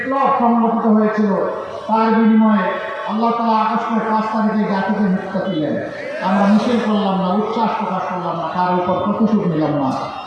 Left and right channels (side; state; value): both; identical; correlation 1.00